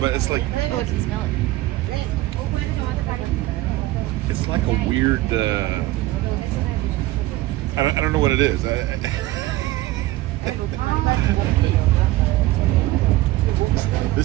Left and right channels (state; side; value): quieter; left; 17.5 dB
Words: but it's like Oh, I can smell it. it's like a weird. I don't know what it is.